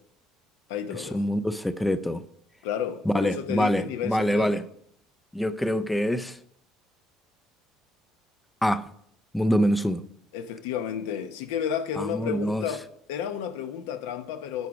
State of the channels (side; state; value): both; normal; correlation 0.77